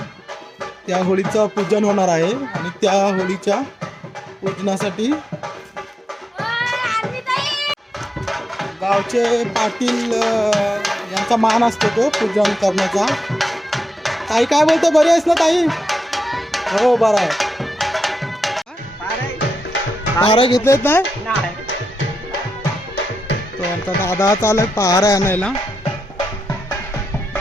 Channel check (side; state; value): both; normal; correlation 0.87